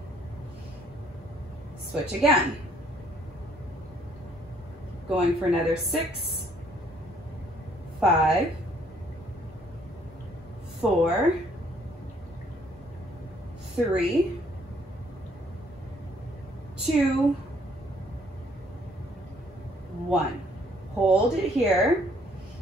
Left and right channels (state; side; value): normal; both; correlation 0.64